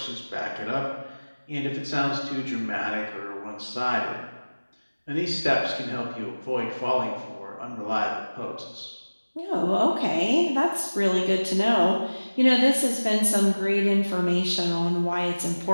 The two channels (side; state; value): both; inverted; correlation -1.00